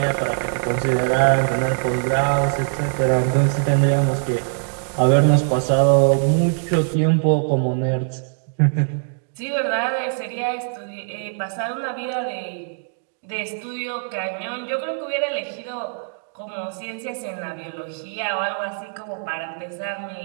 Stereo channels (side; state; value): left; silent; digital silence